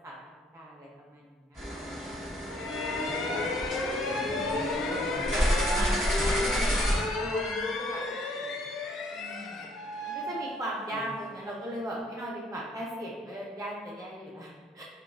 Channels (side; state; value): both; normal; correlation 0.64